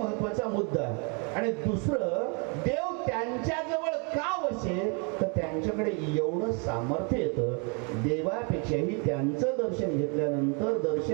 मुद्दा. आणि दुसरं, देव त्यांच्या जवळ का वसे तर त्यांच्याकडे एवढं सामर्थ्य येतं, देवापेक्षाही त्यांचं दर्शन घेतल्यानंतर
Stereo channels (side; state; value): left; quieter; 35.4 dB